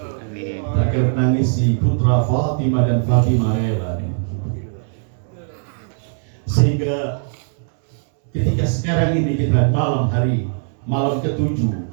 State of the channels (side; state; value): left; silent; digital silence